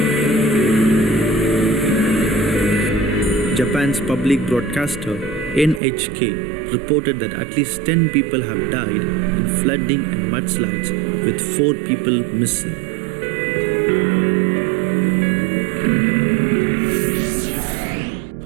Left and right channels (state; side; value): drops out; left; at 5.8 s